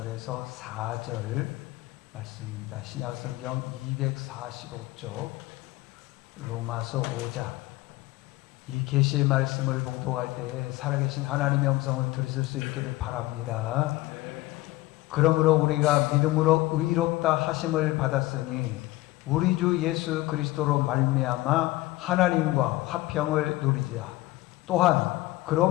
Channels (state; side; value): quieter; right; 18.5 dB